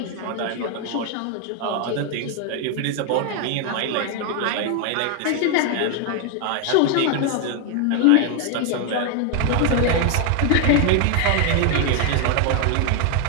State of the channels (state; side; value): different; both; correlation 0.00